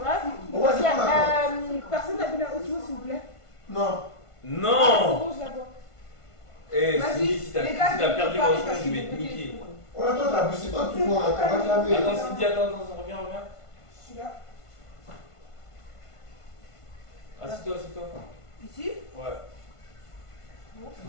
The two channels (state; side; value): late; right; 1.5 ms